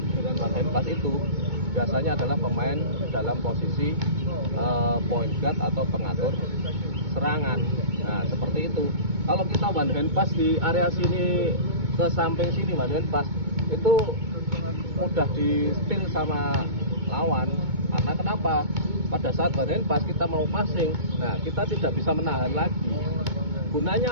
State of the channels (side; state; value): left; late; 2.2 ms